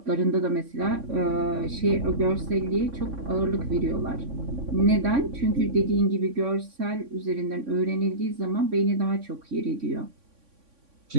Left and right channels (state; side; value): late; left; 3.6 ms